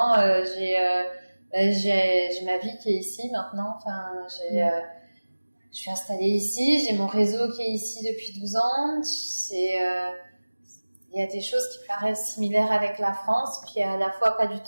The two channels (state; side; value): inverted; both; correlation -1.00